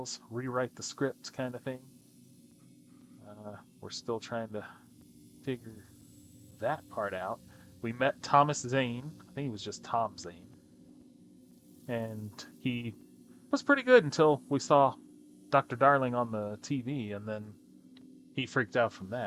rewrite the script kind of thing. We're still trying to figure that part out. We met Thomas Zane. I think he was just Tom Zane. And he was pretty good until we saw Dr. Darling on the TV, and then he freaked out from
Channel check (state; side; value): identical; both; correlation 1.00